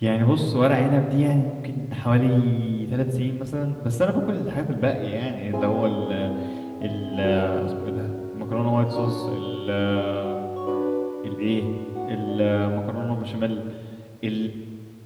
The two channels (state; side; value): identical; both; correlation 1.00